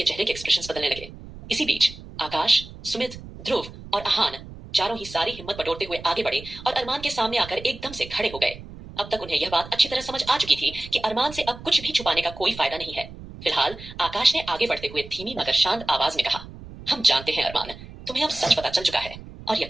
चेहरे के एक्सप्रेशंस बदलने लगे। इसी बीच आकाश, सुमित, ध्रुव और आहान चारों ही सारी हिम्मत बटोरते हुए आगे बढ़े और अरमान के सामने आकर एकदम से खड़े हो गए। अब तक उन्हें यह बात अच्छी तरह समझ आ चुकी थी कि अरमान से अब कुछ भी छुपाने का कोई फायदा नहीं है। फिलहाल आकाश ने आगे बढ़ते हुए धीमी मगर शांत आवाज में कहा, हम जानते हैं अरमान, तुम्हें अब सच पता चल चुका है और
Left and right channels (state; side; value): noise; right; rumble, 15 dB below the sound